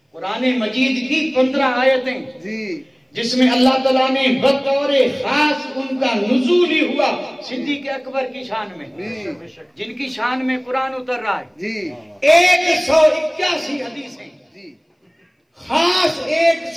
قرآن مجید کی 15 آیتیں جس میں اللہ تعالیٰ نے بطور خاص ان کا نزول ہی ہوا صدیق اکبر کی شان میں، جن کی شان میں قرآن اتر رہا ہے. 181 حدیثیں خاص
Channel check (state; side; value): identical; both; correlation 1.00